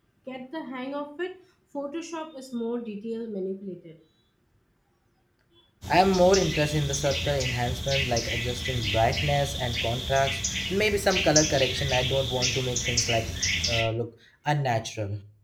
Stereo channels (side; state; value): both; identical; correlation 1.00